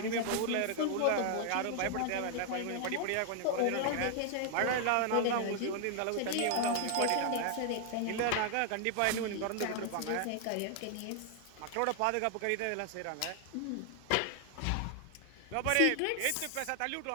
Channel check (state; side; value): different; both; correlation 0.00